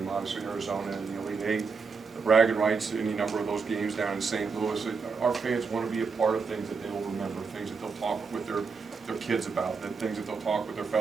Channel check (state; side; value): quieter; left; 5.0 dB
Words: obviously Arizona and the Elite Eight, the bragging rights, any number of those games down in St. Louis. Our fans want to be a part of things that they will remember, things that they'll talk with their kids about, things that they'll talk with their